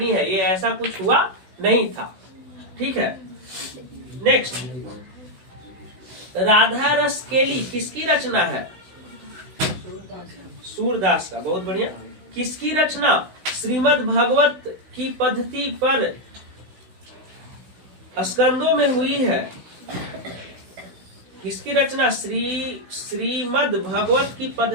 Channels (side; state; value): left; late; 16 ms